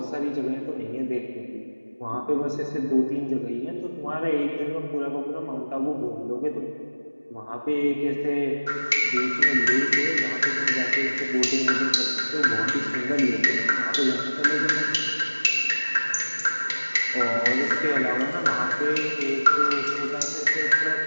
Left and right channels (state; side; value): inverted; both; correlation -1.00